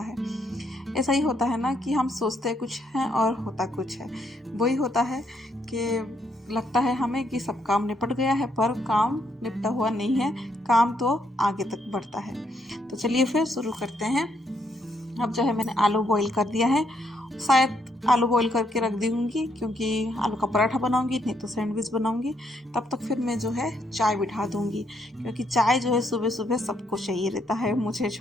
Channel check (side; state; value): both; normal; correlation 0.74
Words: ऐसा ही होता है ना कि हम सोचते कुछ हैं और होता कुछ है। वही होता है कि लगता है हमें कि सब काम निपट गया है, पर काम निपटा हुआ नहीं है, काम तो आगे तक बढ़ता है। तो चलिए फिर शुरू करते हैं। अब जो है मैंने आलू बॉईल कर दिया है, शायद आलू बॉईल करके रख दूँगी क्योंकि आलू का पराठा बनाऊँगी, नहीं तो सैंडविच बनाऊँगी। तब तक फिर मैं जो है चाय बिठा दूँगी, क्योंकि चाय जो है सुबह सुबह सबको चाहिए रहता है, मुझे